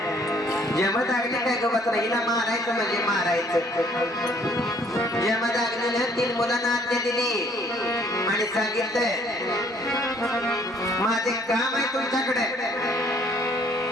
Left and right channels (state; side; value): normal; both; correlation 0.61